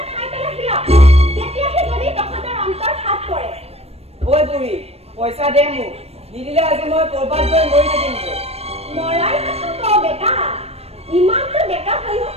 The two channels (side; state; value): left; late; 0.29 ms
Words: খাই পেলাই হিয়া তেতিয়াহে যদি তহঁতৰ অন্তৰ হাত পৰে ঐ বুঢ়ী পইচা দে মোক নিদিলে আজি মই কৰবাত গৈ মৰি থাকিম মৰাৰ কথা কওঁ বেটা ইমানটো ডেকা হৈও